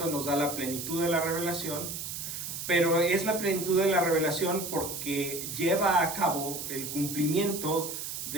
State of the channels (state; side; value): noise; right; hiss, 6 dB below the sound